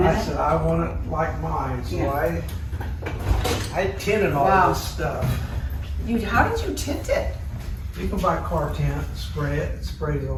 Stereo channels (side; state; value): both; identical; correlation 1.00